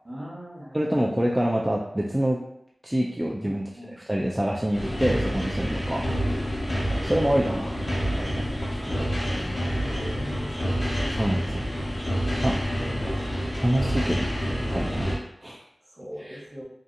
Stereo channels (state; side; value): normal; both; correlation 0.98